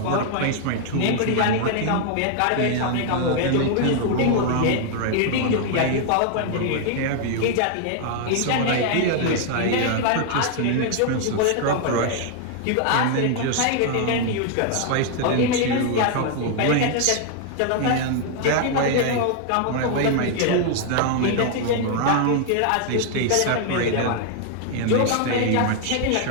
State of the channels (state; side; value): different; both; correlation 0.00